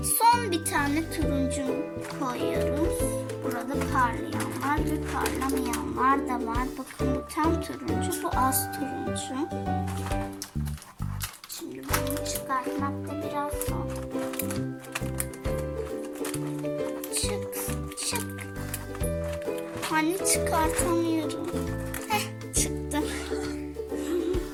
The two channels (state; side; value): identical; both; correlation 1.00